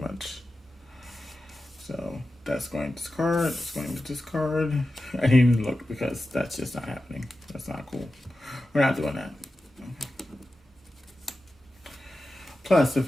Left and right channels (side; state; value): both; normal; correlation 0.93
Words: So that's going to discard. It's going to discard. I didn't even look because that's just not happening. That's not cool. We're not doing that. Plus, if